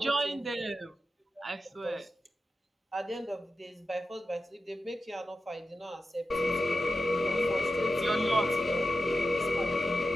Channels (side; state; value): both; normal; correlation 0.92